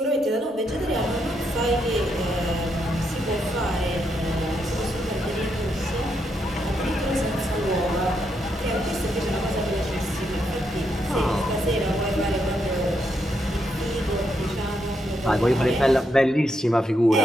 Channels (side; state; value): both; normal; correlation 0.79